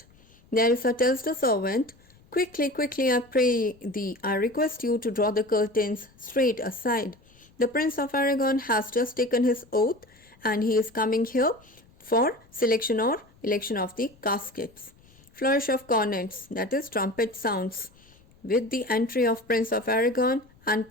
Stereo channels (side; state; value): left; noise; rumble, 29 dB below the sound